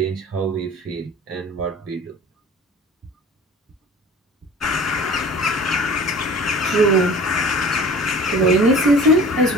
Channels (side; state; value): both; normal; correlation 0.43